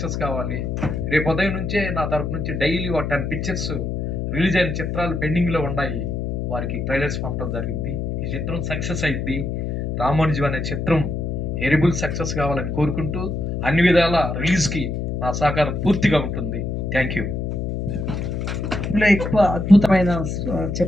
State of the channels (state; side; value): noise; left; hum, 2 dB below the sound